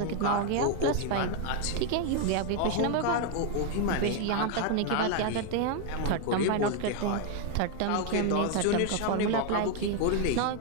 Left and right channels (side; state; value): both; different; correlation 0.01